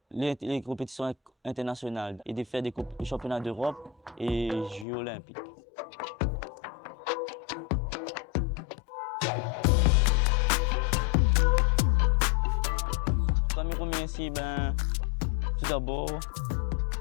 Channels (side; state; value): right; drops out; at 4.9 s